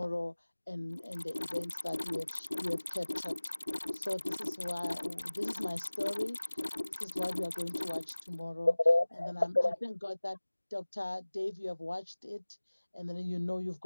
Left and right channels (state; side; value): inverted; both; correlation -1.00